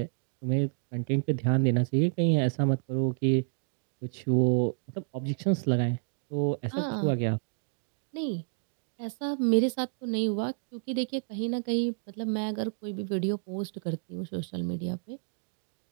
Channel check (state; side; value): silent; left; digital silence